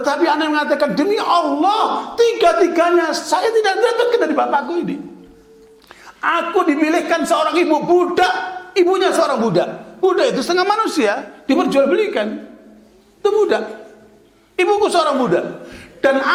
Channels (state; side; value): identical; both; correlation 1.00